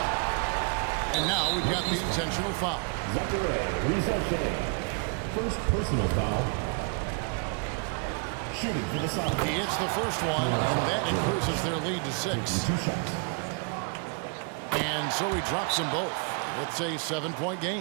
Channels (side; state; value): left; quieter; 37.2 dB